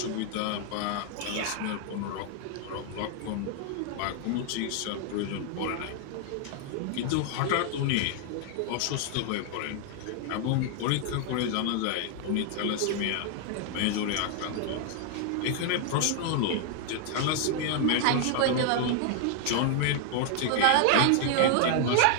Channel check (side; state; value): both; different; correlation 0.00